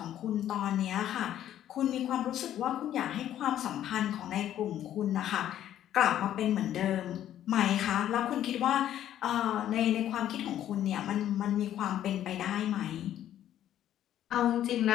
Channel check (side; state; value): right; quieter; 11.5 dB